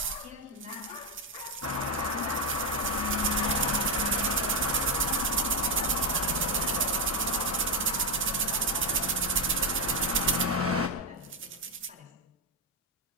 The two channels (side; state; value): both; normal; correlation 0.06